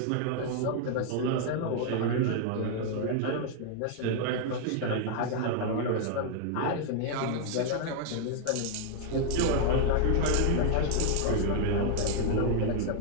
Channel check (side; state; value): both; different; correlation 0.00